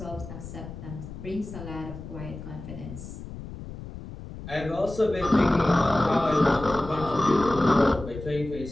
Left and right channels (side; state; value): left; noise; rumble, 12 dB below the sound